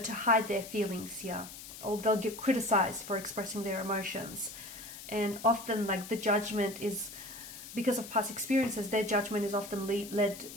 hide their feelings here, or they'll get criticized for expressing their emotions. And often, like, the judgment is, because of past experiences, their judgment is often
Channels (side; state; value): left; noise; hiss, 13 dB below the sound